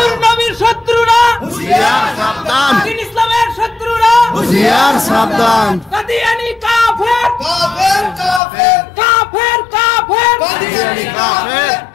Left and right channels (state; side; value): drops out; right; at 8.4 s